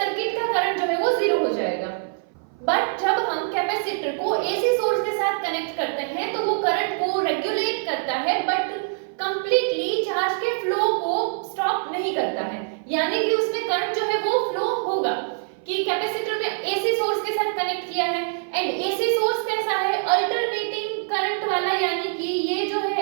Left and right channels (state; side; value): silent; left; 58 dB below the other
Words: का करंट जो है वो जीरो हो जाएगा. बट जब हम कैपेसिटर को एसी सोर्स के साथ कनेक्ट करते हैं तो वो करंट को रेगुलेट करता है बट कंप्लीटली चार्ज के फ्लो को स्टॉप नहीं करता है. यानी कि उसमें करंट जो है वो फ्लो होगा कि कैपेसिटर में एसी सोर्स के साथ कनेक्ट किया है एंड एसी सोर्स कैसा है, अल्टरनेटिंग करंट वाला, यानी कि ये जो